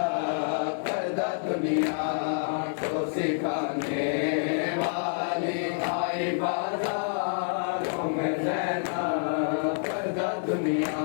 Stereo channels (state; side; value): silent; right; digital silence